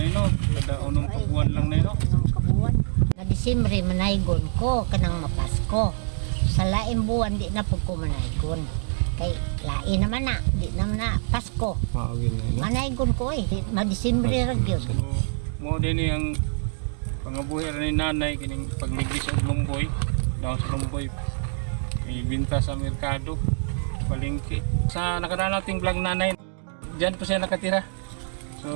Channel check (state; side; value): silent; left; 58 dB below the other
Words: no? Kada unong buwan lang nay, no? Unong kabuwan. Na Disyembre manaygon ko kanang mapasko. Sa laing buwan di na pud ko manaygon. Kay lain naman na, di naman na Pasko. Maugin nay, no? Manaygon ko ma-Disyembre ra gyud. Mo din ang pangabuhi ra ni nanay kining pagligis og lumboy, daw sa lumboy. Ibinta sa merkado, palengke. Sa nakadaan nating vlog nanay, diyan po siya nakatira.